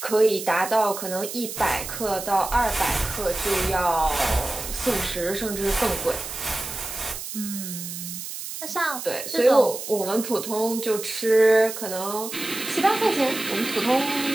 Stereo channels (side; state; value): right; noise; hiss, 8 dB below the sound